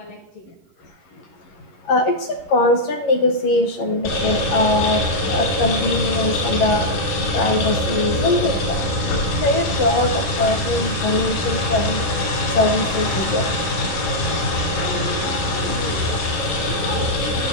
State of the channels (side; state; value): right; late; 11 ms